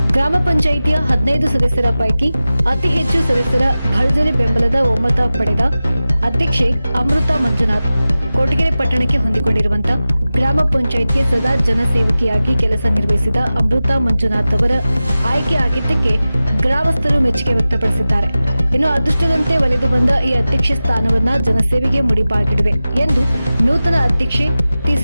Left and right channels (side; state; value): both; inverted; correlation -0.95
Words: ಗ್ರಾಮ ಪಂಚಾಯಿತಿಯ 15 ಸದಸ್ಯರ ಪೈಕಿ ಅತಿ ಹೆಚ್ಚು ಸದಸ್ಯರ ಭರ್ಜರಿ ಬೆಂಬಲದ ಒಮ್ಮತ ಪಡೆದ ಅಧ್ಯಕ್ಷೆ ಅಮೃತಾ ಮಂಜುನಾಥ್. ಕೊರಟಗೆರೆ ಪಟ್ಟಣಕ್ಕೆ ಹೊಂದಿಕೊಂಡಿರುವಂತಹ ಗ್ರಾಮ ಪಂಚಾಯಿತಿಯ ಸದಾ ಜನಸೇವಕಿಯಾಗಿ ಕೆಲಸ ನಿರ್ವಹಿಸಿದ ಅಮೃತಾ ಮಂಜುನಾಥ್ ಅವರ ಆಯ್ಕೆ ಆಗಿದ್ದಕ್ಕೆ ಗ್ರಾಮಸ್ಥರು ಮೆಚ್ಚುಗೆ ವ್ಯಕ್ತಪಡಿಸಿದ್ದಾರೆ. ಇನ್ನು ಅದೃಷ್ಟದಂತೆ ಒಲಿದು ಬಂದ ಈ ಅಧ್ಯಕ್ಷ ಸ್ಥಾನವನ್ನ ಜನಸೇವೆಗೆ ಮುಡಿಪಾಗಿಡುವೆ ಎಂದು ನೂತನ ಅಧ್ಯಕ್ಷೆ